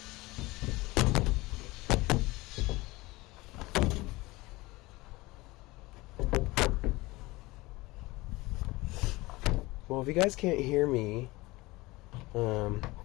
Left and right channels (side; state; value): right; quieter; 21.2 dB